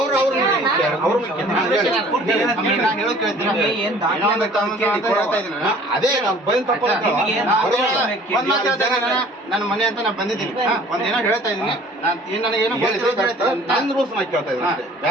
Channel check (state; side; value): normal; both; correlation 0.51